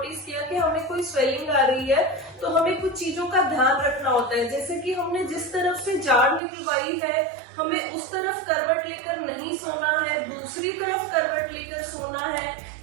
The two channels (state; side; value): drops out; left; at 6.4 s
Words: किया कि हमें कोई स्वेलिंग आ रही है, तो हमें कुछ चीजों का ध्यान रखना होता है। जैसे कि हमने जिस तरफ से जाड़ निकलवाई है, हमें उस तरफ करवट लेकर नहीं सोना है, दूसरी तरफ करवट लेकर सोना है।